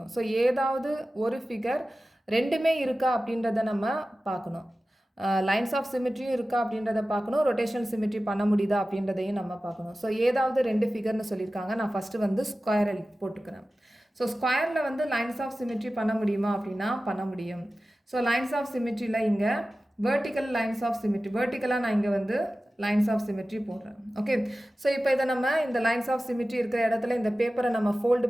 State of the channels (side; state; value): both; normal; correlation 0.95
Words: So ஏதாவது ஒரு figure ரெண்டுமே இருக்கா அப்படின்றத நம்ம பார்க்கணும். லைன்ஸ் ஆஃப் சிமெட்ரியும் இருக்கா அப்படின்றத பார்க்கணும், ரொட்டேஷனல் சிமெட்ரி பண்ண முடியுதா அப்படின்றதையும் நம்ம பார்க்கணும். ஸோ ஏதாவது ரெண்டு ஃபிகர்னு சொல்லியிருக்காங்க. நான் ஃபஸ்ட்டு வந்து ஸ்கொயர் போட்டுக்கிறேன். ஸோ ஸ்கொயரில் வந்து லைன்ஸ் ஆஃப் சிமெட்ரி பண்ண முடியுமா அப்படின்னா பண்ண முடியும். ஸோ லைன்ஸ் ஆஃப் சிமெட்ரியில் இங்கே வெர்டிக்கல் லைன்ஸ் ஆஃப் சிமெட்ரி, வெர்டிக்கலாக நான் இங்கே வந்து லைன்ஸ் ஆஃப் சிமெட்ரி போடுறேன். ஓகே, ஸோ இப்போ இதை நம்ம இந்த லைன்ஸ் ஆஃப் சிமெட்ரி இருக்கிற இடத்துல இந்த பேப்பரை நம்ம ஃபோல்டு